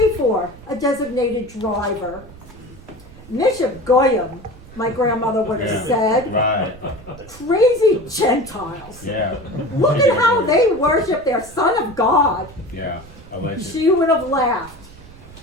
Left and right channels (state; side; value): noise; right; rumble, 20 dB below the sound